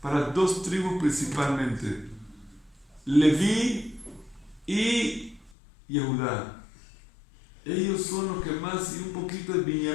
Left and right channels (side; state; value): right; drops out; at 5.6 s